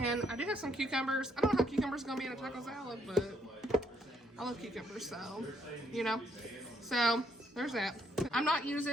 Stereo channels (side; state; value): both; normal; correlation 0.71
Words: I do have some cucumbers. I don't know how cucumbers are gonna be in a taco salad, but I love cucumbers, so so there's that. I'm not